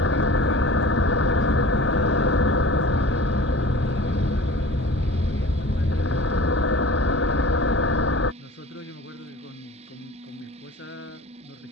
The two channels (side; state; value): both; normal; correlation 0.40